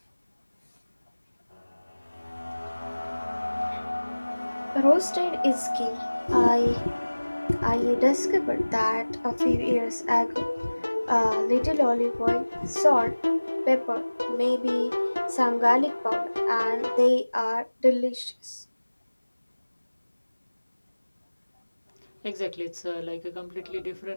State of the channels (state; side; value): inverted; both; correlation -1.00